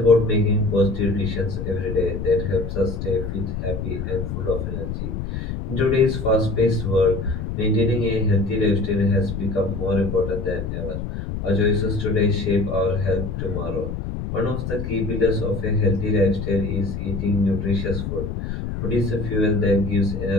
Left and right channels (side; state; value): left; noise; rumble, 5 dB below the sound